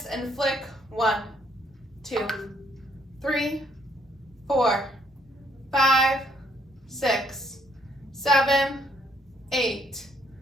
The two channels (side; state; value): both; normal; correlation 0.68